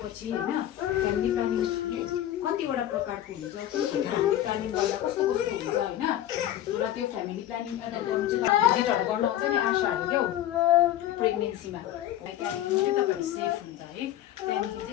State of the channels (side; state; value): right; quieter; 12.5 dB